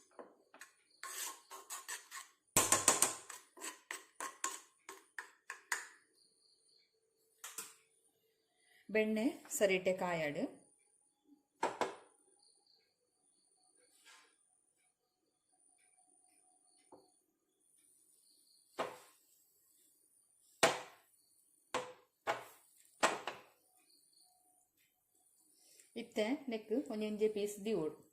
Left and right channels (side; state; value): both; identical; correlation 1.00